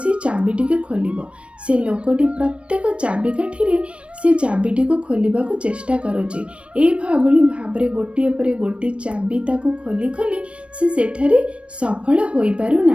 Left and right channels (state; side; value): late; left; 0.060 ms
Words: चाबिटी को खोल से लोकटी प्रत्येक चाबिकाठी से चाबिटी को खोलने को चेष्टा करुचे एभली भाव गोटे पर गोटे चाबी ताको खोली खोली से सेठारे सफल हो पारु